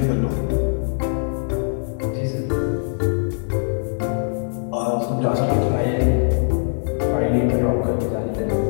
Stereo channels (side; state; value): right; silent; digital silence